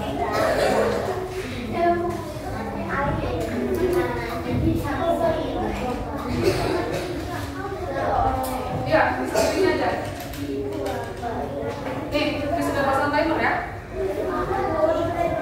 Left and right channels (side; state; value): both; identical; correlation 1.00